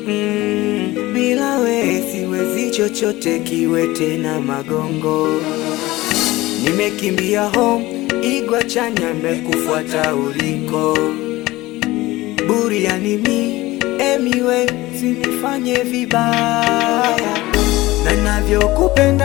Bila we siwezi chochote, kiwe tena magongo. Nimekimbia home, igwa chanya mekufuata uliko. Buriani mi, emiwe, sinifanye vibaya. Na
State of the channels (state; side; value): quieter; right; 18.9 dB